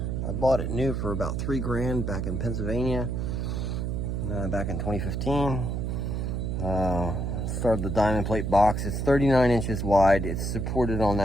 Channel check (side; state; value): right; noise; hum, 1 dB below the sound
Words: I bought it new for about $3 grand back in Pennsylvania, back in 2015. Started the diamond plate box. It's 39 inches wide. It's supported on